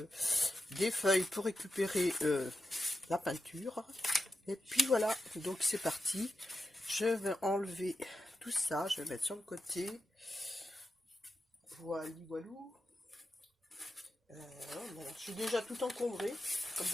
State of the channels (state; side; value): normal; both; correlation 0.90